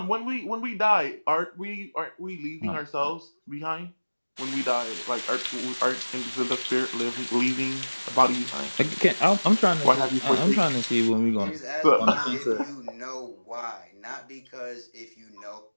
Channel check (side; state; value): both; inverted; correlation -1.00